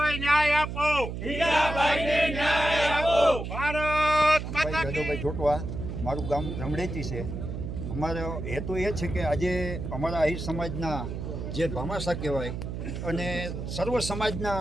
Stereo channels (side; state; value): right; noise; hum, 6 dB below the sound